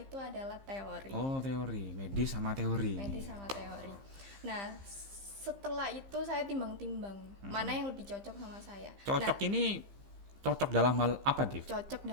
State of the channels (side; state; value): left; late; 15 ms